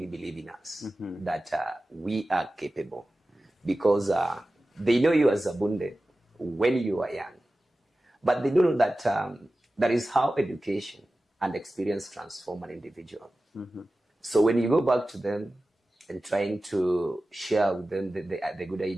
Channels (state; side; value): normal; both; correlation 0.95